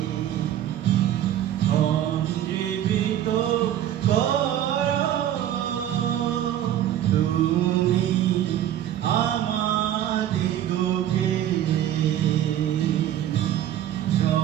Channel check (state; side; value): quieter; left; 11.5 dB